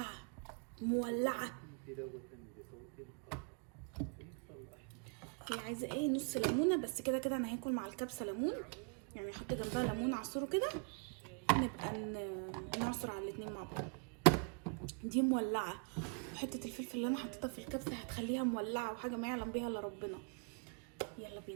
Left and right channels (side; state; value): left; quieter; 38.1 dB